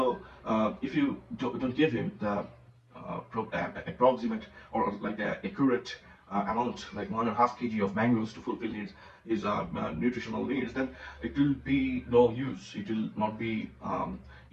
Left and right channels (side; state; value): both; identical; correlation 1.00